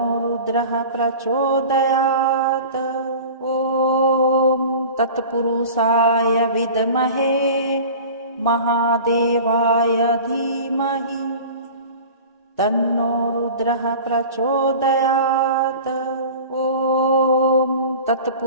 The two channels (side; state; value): both; inverted; correlation -0.38